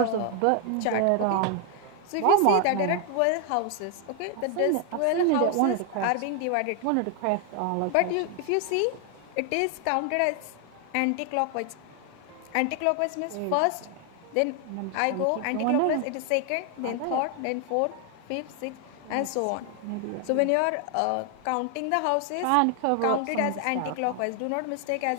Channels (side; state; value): both; different; correlation 0.00